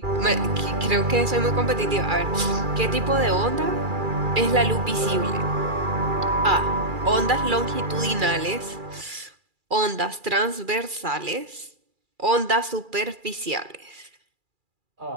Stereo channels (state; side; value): late; left; 2.4 ms